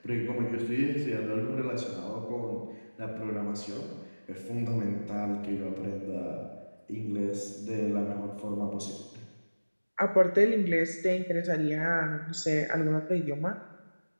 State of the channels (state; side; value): inverted; both; correlation -1.00